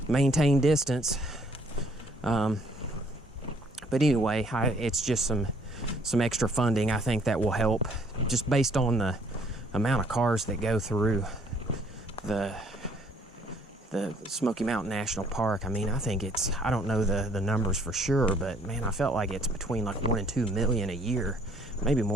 maintain distance. But anyway, it's just some extra funding. I think that will help, just based on the amount of cars that go through the Smoky Mountain National Park. I mean, I think it's, I don't know the numbers for sure, but man, I felt like it's between like 1 and 2 million a year, maybe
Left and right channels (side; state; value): both; normal; correlation 0.62